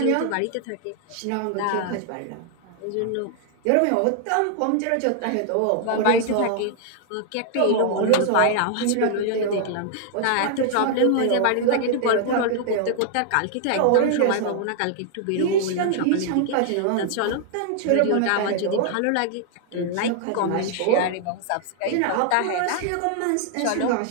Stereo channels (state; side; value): different; both; correlation 0.00